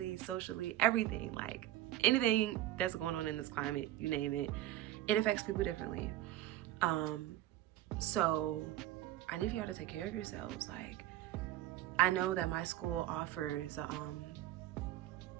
socially, everything, like anything that's going on in this climate, you name it, it affects people differently. So I need for y'all to take care of yourselves. Like, I know that my school offers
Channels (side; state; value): left; quieter; 14.1 dB